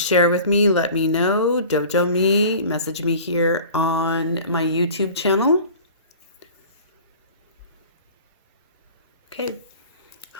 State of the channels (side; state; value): both; inverted; correlation -0.42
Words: with me. Let me know. Dojo me. Message me here on my YouTube channel. Okay.